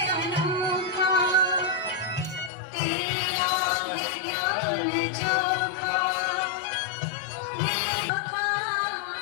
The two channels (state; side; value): drops out; right; at 2.5 s